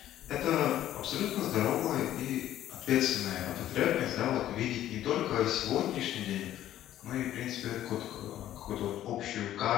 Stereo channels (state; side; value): quieter; right; 12.6 dB